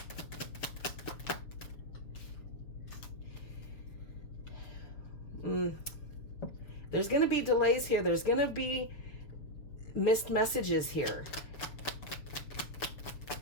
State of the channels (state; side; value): late; right; 6.7 ms